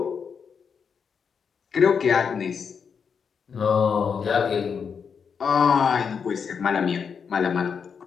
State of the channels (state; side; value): quieter; right; 6.4 dB